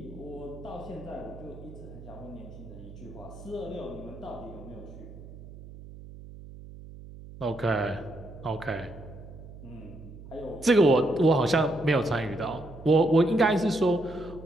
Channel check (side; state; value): right; noise; hum, 15 dB below the sound